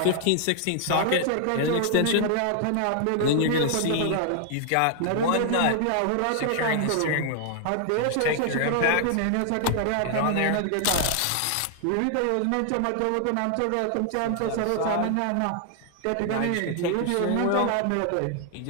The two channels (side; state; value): both; different; correlation 0.00